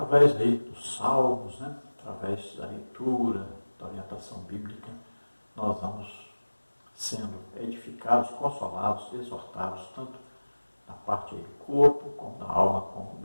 aí dos salmos, né, através da leitura, da orientação bíblica, nós vamos sendo edificados, consolados, exortados, tanto na parte aí do corpo, como da alma, como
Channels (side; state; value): both; inverted; correlation -1.00